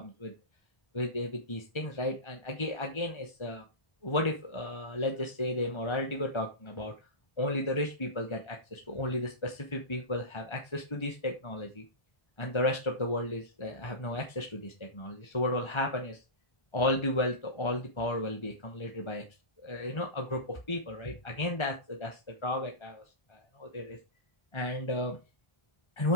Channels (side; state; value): right; late; 1.3 ms